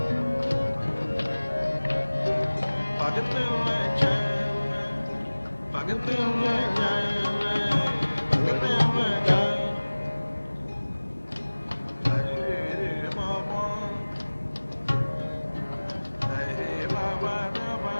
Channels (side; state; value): both; inverted; correlation -1.00